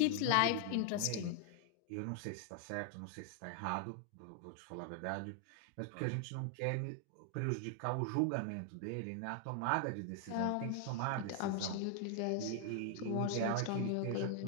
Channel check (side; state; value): both; different; correlation 0.00